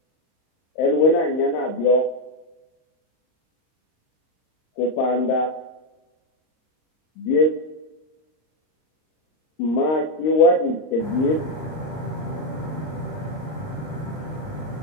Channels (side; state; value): right; late; 39 ms